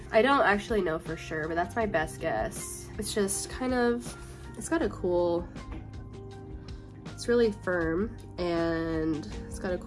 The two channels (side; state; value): both; identical; correlation 1.00